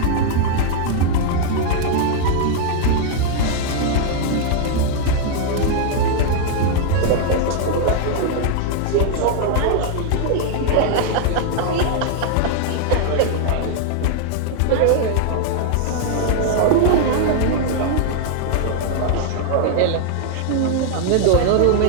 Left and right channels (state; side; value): different; both; correlation -0.01